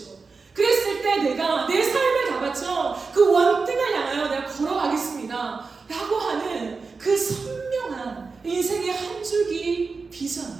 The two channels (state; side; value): quieter; left; 4.5 dB